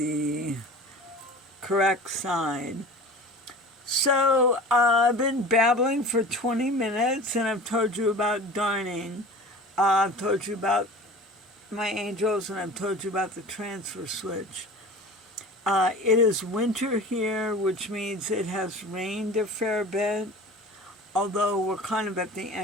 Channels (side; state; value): both; normal; correlation 0.38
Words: correct side. So I've been babbling for 20 minutes and I've told you about darning. I've told you about my angels and I've told you about the transfer switch. It is winter here, which means it has rained a fair bit, although we're kind of at the